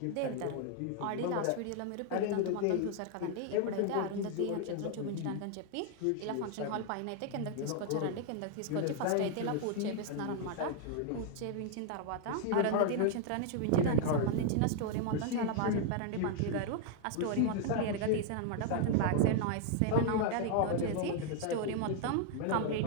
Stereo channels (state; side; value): different; both; correlation 0.00